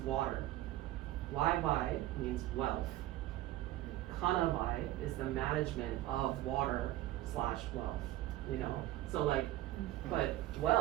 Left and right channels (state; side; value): quieter; left; 15.4 dB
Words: Wai means wealth. Kanawai is the management of water / wealth, So like, but